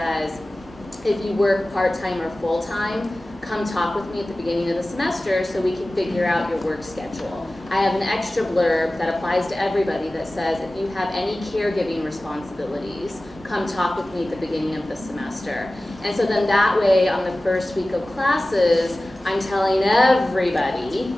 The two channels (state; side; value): normal; both; correlation 0.97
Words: if you work part-time or full-time, come talk with me at the beginning of the semester so we can figure out your work schedule. I have an extra blurb that applies to everybody that says, if you have any caregiving responsibilities, come talk with me at the beginning of the semester. And so then that way, on the first week of classes, I'm telling everybody,